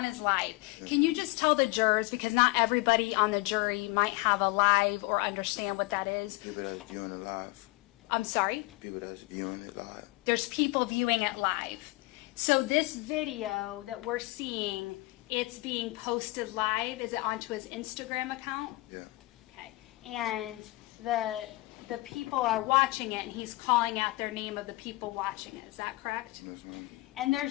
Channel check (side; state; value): right; quieter; 21.6 dB